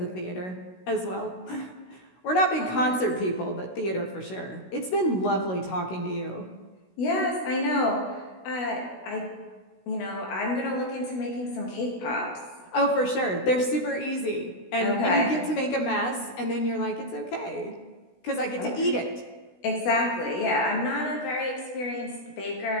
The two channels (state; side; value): late; right; 16 ms